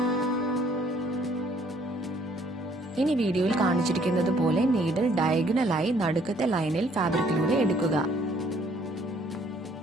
ഇനി വീഡിയോയിൽ കാണിച്ചിരിക്കുന്നത് പോലെ നീഡിൽ ഡയഗണലായി നടുക്കത്തെ ലൈനിൽ ഫാബ്രിക്കിലൂടെ എടുക്കുക.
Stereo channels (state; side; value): normal; both; correlation 0.62